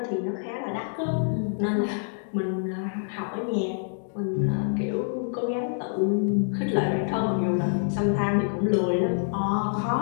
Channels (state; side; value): silent; right; digital silence